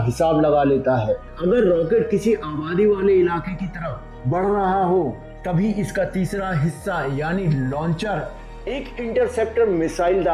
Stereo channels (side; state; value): both; identical; correlation 1.00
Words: हिसाब लगा लेता है। अगर रॉकेट किसी आबादी वाले इलाके की तरफ बढ़ रहा हो तभी इसका तीसरा हिस्सा यानी लॉन्चर एक इंटरसेप्टर मिसाइल